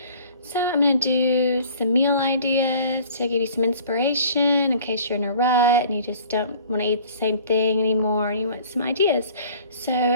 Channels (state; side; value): inverted; both; correlation -0.50